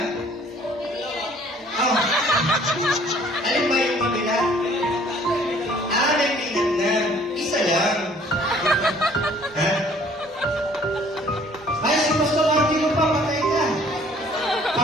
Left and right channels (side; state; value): both; normal; correlation 0.57